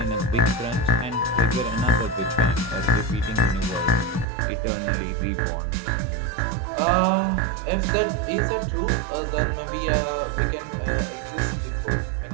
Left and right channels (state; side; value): drops out; left; at 4.2 s